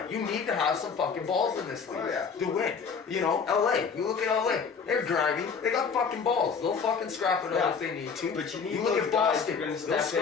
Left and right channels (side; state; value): right; quieter; 5.8 dB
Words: you need to have some fucking balls in this league to win. You know, LA, you look at LA, they're grimy, they got fucking balls. They'll fucking scrap it out if they need to. But you need look those at guys Boston, who are gonna they'll step